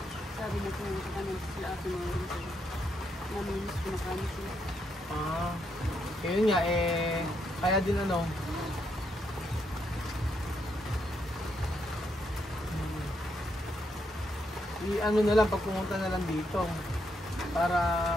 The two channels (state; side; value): normal; both; correlation 0.78